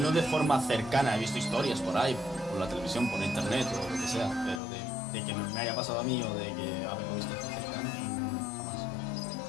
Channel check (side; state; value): right; drops out; at 4.6 s